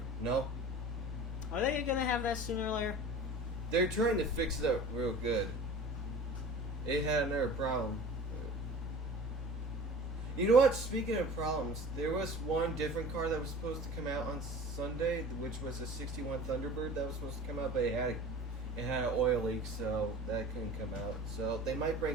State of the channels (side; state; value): both; normal; correlation 0.39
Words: No. Are they going to have that sooner or later? They're trying to fix it up real good. It had another problem. You know what? Speaking of problems, there was one different car that was supposed to come out on Sunday, which was a 61 Thunderbird that was supposed to come out, but it had an oil leak, so that couldn't come out. So they might